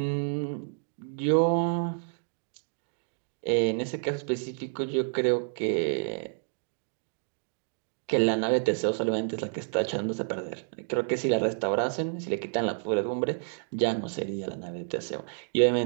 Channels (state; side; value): silent; left; digital silence